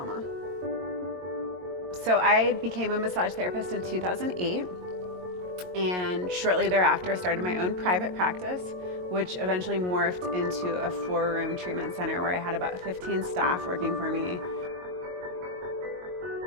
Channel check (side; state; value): left; late; 22 ms